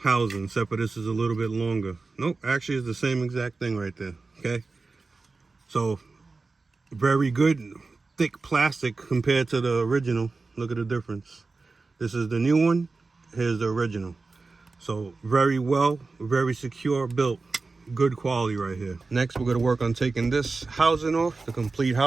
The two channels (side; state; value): left; quieter; 3.9 dB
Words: housing, except for this is a little bit longer. Nope, actually it's the same exact thing right there, okay? So, very good, thick plastic compared to the original. Look at the difference. This is the new one, here's the original. So, very well, very secure built, good quality right here. Next, we're gonna work on taking this housing off, the complete